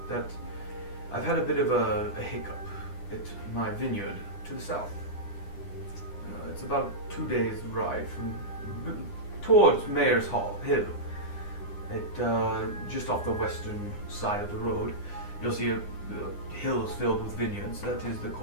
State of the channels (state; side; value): late; right; 9.9 ms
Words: that I've had a bit of a hiccup at my vineyard to the south. It's about 2 days ride towards Mayor's Hill, Just off the western side of the road, you'll see hills filled with vineyards. That is the